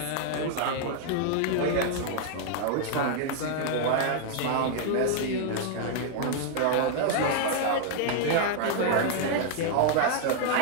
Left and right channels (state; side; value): different; both; correlation 0.00